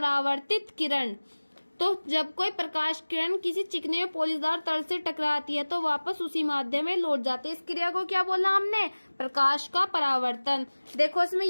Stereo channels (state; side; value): inverted; both; correlation -1.00